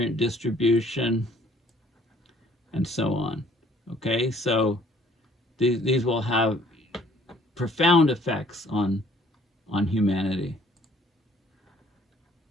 distribution, and so on. Okay, so these will have profound effects on humanity.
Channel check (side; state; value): both; normal; correlation 0.59